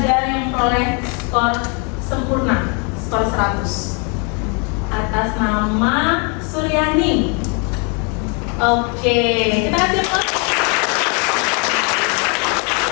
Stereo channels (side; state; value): right; quieter; 34.9 dB